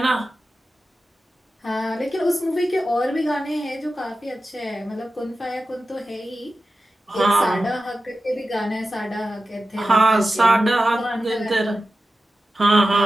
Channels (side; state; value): both; normal; correlation 0.93